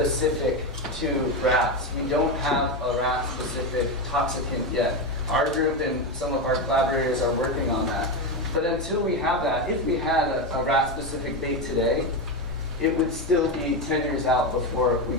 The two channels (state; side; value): normal; both; correlation 0.13